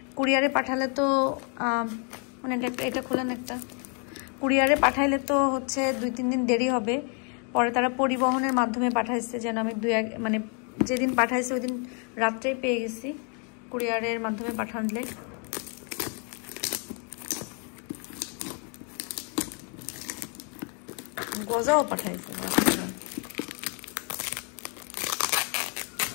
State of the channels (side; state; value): right; quieter; 38.6 dB